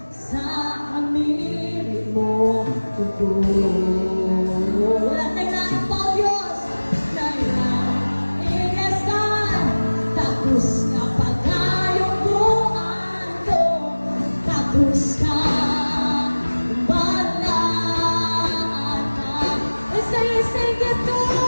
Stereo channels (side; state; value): both; inverted; correlation -1.00